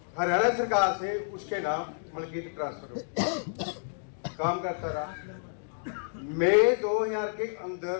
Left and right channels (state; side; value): silent; right; digital silence